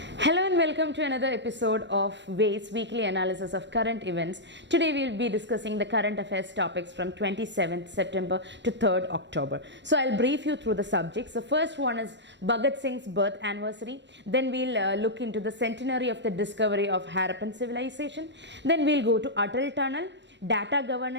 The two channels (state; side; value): late; left; 0.52 ms